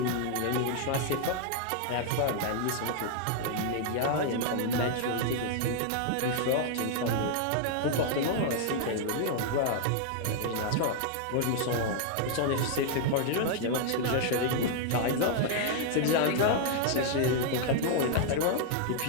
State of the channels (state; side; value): different; both; correlation -0.01